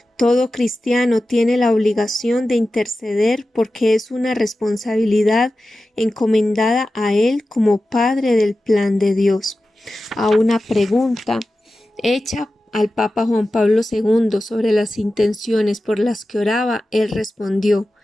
Todo cristiano tiene la obligación de interceder porque es una responsabilidad encomendada a él como Padre del plan de Dios. A una pregunta hecha al Papa Juan Pablo II sobre las intenciones por las que oraba, él respondió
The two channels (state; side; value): normal; both; correlation 0.94